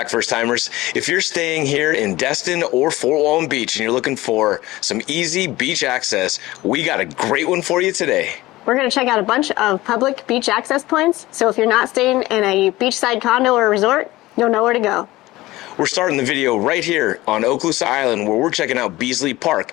first timers. If you're staying here in Destin or Fort Walton Beach and you're looking for some easy beach access, we got a great one for you today. We're going to check out a bunch of public beach access points. So if you're not staying in a beachside condo or resort, you'll know where to go. We're starting the video right here on Okaloosa Island where we're checking out Beasley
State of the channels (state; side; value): quieter; right; 18.2 dB